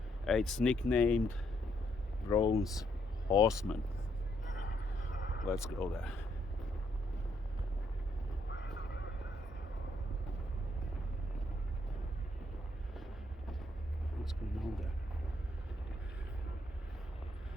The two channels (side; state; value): both; normal; correlation 0.73